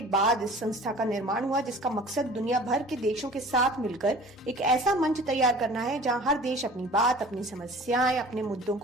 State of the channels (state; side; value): normal; both; correlation 0.45